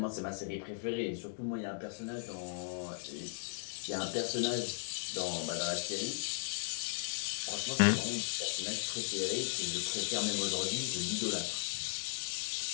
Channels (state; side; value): silent; right; digital silence